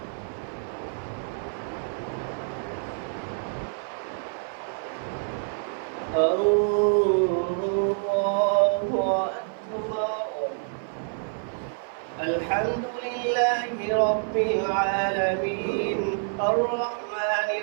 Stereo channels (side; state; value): left; silent; 56 dB below the other